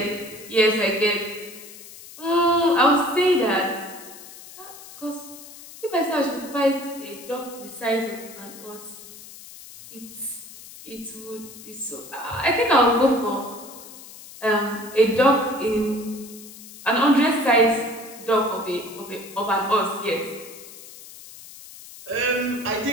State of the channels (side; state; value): left; noise; hiss, 17 dB below the sound